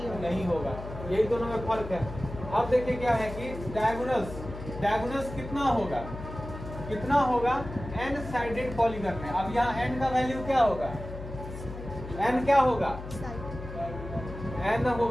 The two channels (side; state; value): left; noise; hum, 10 dB below the sound